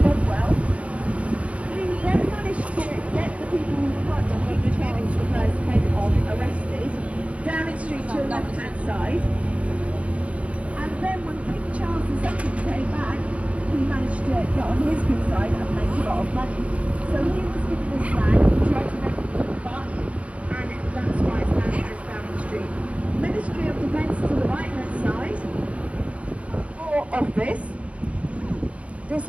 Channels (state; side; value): late; left; 0.064 ms